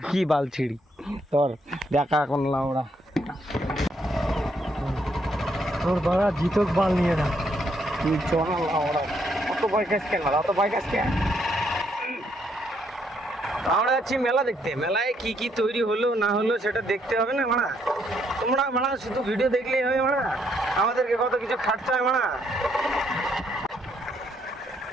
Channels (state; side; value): normal; both; correlation 0.73